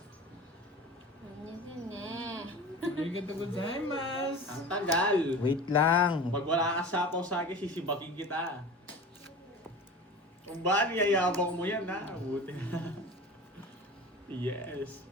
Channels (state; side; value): normal; both; correlation 0.35